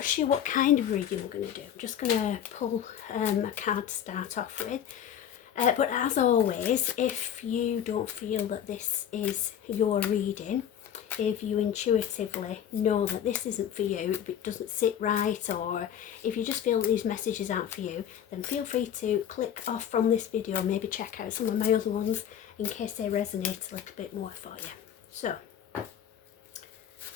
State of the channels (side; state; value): right; quieter; 9.5 dB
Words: sure what kind of reading we're going to do. I'm just going to pull a card to start off with. But as always, if you don't feel that this is your reading, if you intuitively know that this isn't for you, if it doesn't sit right, or if you just feel that these messages aren't for you, then feel free to click off from this video, maybe check out some of my other ones in case they resonate a little bit more for you. So, I'm